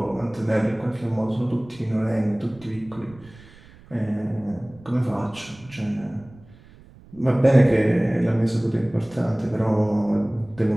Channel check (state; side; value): noise; right; rumble, 23 dB below the sound